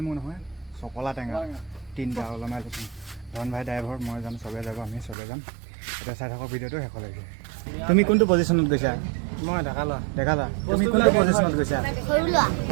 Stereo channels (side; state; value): left; drops out; at 5.2 s